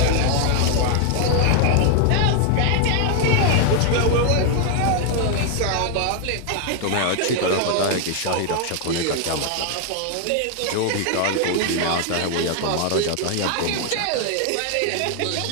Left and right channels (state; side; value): different; both; correlation 0.00